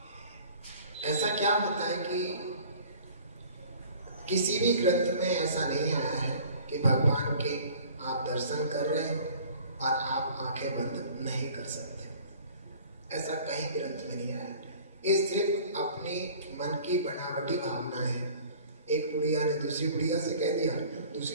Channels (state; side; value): inverted; both; correlation -0.48